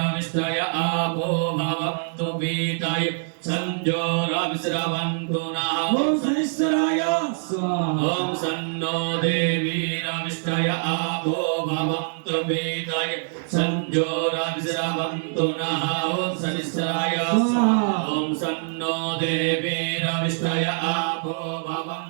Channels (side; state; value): left; silent; digital silence